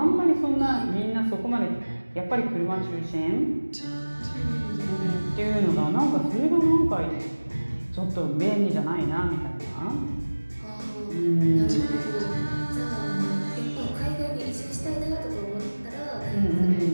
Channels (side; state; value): both; inverted; correlation -1.00